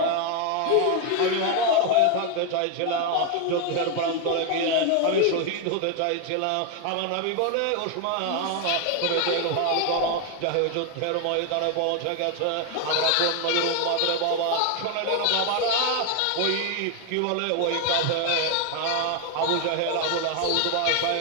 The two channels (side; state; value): both; different; correlation 0.01